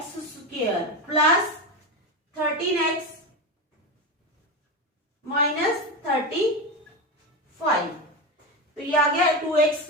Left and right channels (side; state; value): both; normal; correlation 0.17